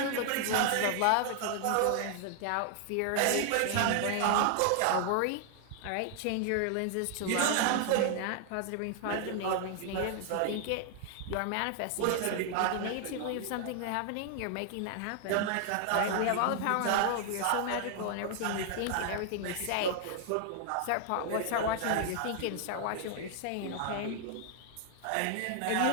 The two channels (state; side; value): different; both; correlation 0.00